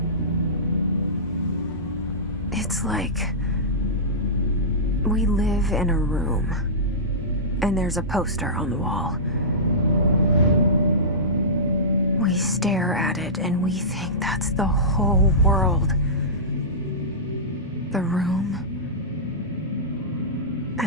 It's like we live in a room, and there's a poster on the wall. We stare at it and we think that's the whole world. The room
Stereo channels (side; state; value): both; normal; correlation -0.18